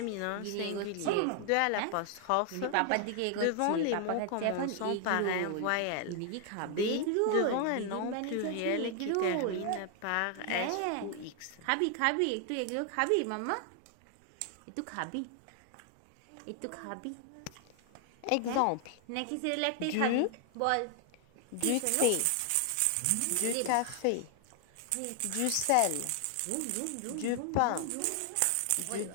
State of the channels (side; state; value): both; different; correlation 0.00